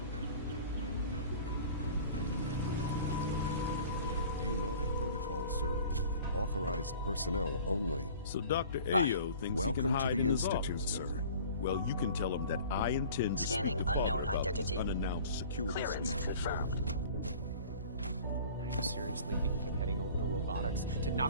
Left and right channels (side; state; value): both; inverted; correlation -0.45